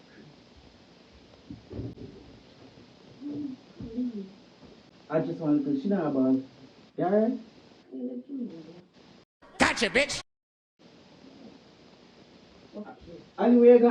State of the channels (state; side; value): identical; both; correlation 1.00